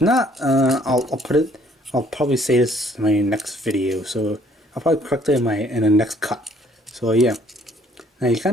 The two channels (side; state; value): both; normal; correlation 0.61